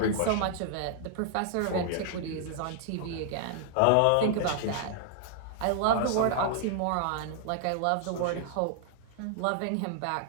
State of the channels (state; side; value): different; both; correlation -0.01